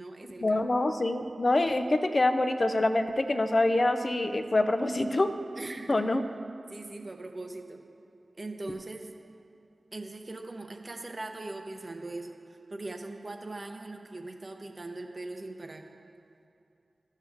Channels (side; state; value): both; normal; correlation 0.97